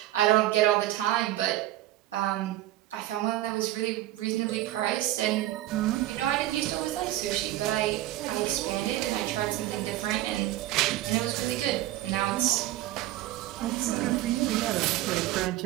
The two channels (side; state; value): left; quieter; 15.1 dB